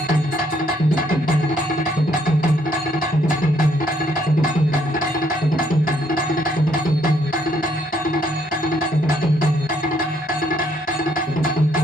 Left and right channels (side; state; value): both; normal; correlation 0.69